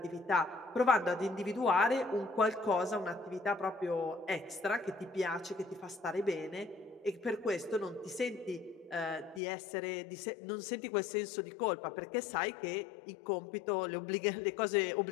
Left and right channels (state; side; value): drops out; right; at 9.4 s